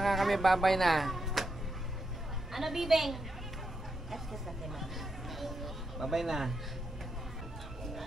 kami, babay na. Ano, Bibeng? Babay na.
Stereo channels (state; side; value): normal; both; correlation 0.83